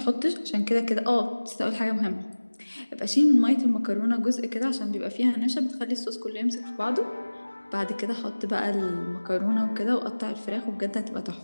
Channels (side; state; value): both; inverted; correlation -1.00